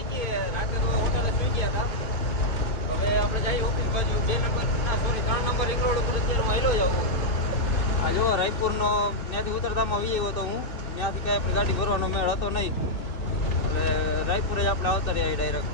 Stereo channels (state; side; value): late; right; 2.6 ms